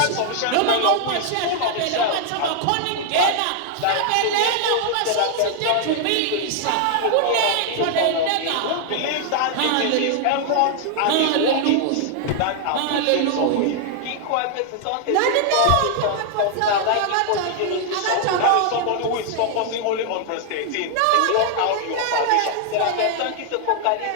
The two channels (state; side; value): different; both; correlation 0.00